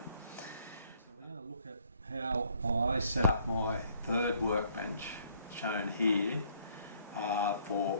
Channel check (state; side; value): inverted; both; correlation -0.64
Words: So we're going to look at how I set up my third workbench, shown here, for